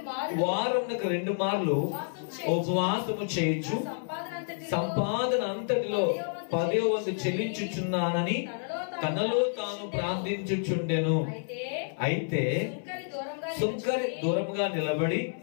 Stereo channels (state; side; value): silent; right; 58 dB below the other